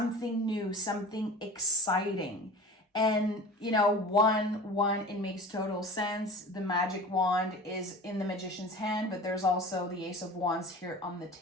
new, something exciting. And, you know, one, it makes total sense. The magic wand is in the Magician's hand, but there's also the Ace of Wands here on the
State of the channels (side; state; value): both; normal; correlation 0.38